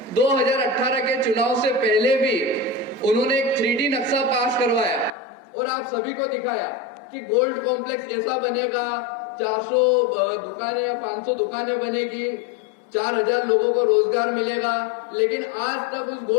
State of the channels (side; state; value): right; drops out; at 5.1 s